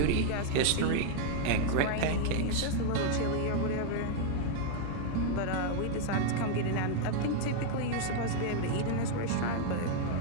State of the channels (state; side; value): different; both; correlation 0.00